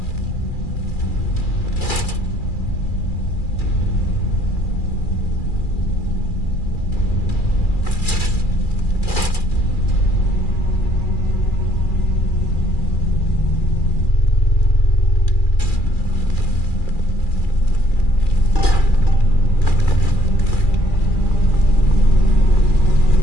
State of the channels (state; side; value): late; right; 2.4 ms